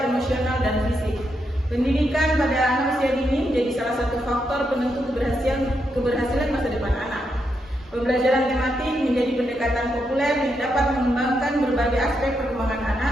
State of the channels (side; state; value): both; normal; correlation 0.82